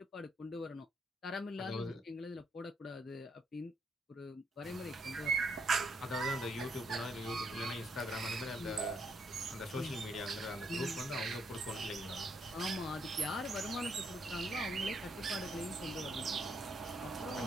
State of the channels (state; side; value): normal; both; correlation 0.73